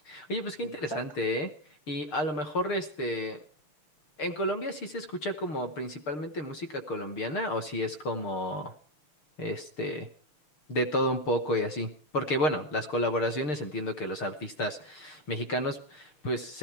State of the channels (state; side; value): late; right; 6.6 ms